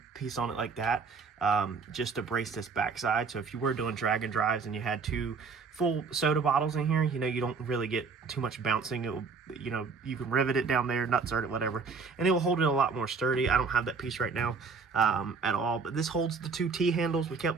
piece on it like that. just to brace this backside. So if you were doing drag and drives and you had 2 full soda bottles in here, you know, you don't really get too much bouncing. It will, you know, you can rivet it down there, nutsert it, whatever, and it will hold it a lot more sturdy. I don't have that piece right now at all, but this holds the 2 T handles. We kept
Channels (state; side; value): quieter; left; 4.9 dB